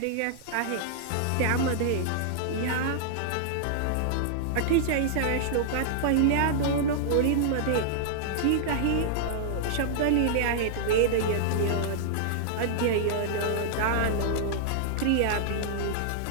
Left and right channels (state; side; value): different; both; correlation -0.01